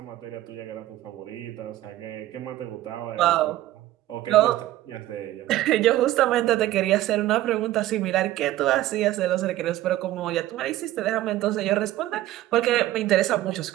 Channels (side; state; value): left; quieter; 14.9 dB